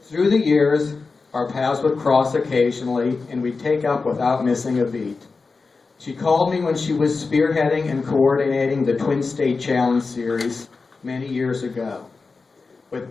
Through the years, our paths would cross occasionally and we'd take up without missing a beat. She called me when she was spearheading and coordinating the Twin State Challenge Series many years ago. With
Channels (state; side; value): quieter; right; 4.3 dB